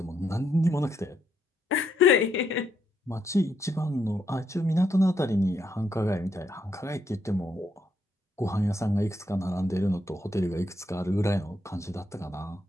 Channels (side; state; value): both; normal; correlation 0.76